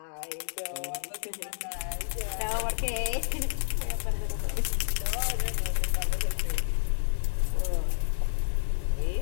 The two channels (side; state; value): right; silent; 58 dB below the other